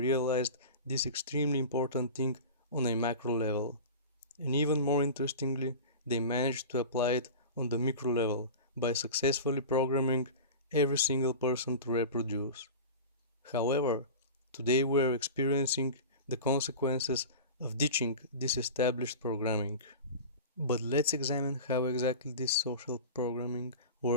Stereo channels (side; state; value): both; inverted; correlation -0.31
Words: this extremely important thing on a macro level. And even more interestingly, they managed to apply it on the micro level by successfully programming every single person to reproduce. However, today we are experiencing the consequences of ditching this established programming. But let's examine how exactly this social programming